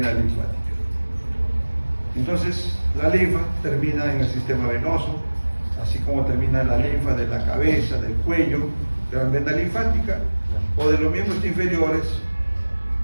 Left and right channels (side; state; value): both; inverted; correlation -1.00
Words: linfática. Entonces la linfa termina en el sistema venoso, así como termina la linfa de la cabeza, del cuello, gran vena linfática, o de los miembros inferiores,